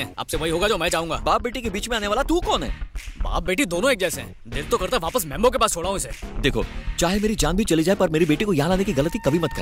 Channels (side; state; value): both; identical; correlation 1.00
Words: अब से वही होगा जो मैं चाहूंगा। बाप बेटी के बीच में आने वाला तू कौन है? बाप बेटी दोनों एक जैसे हैं। दिल तो करता वापस मेम्बो के पास छोड़ा हूँ इसे। देखो, चाहे मेरी जान भी चली जाए पर मेरी बेटी को यहाँ लाने की गलती कभी मत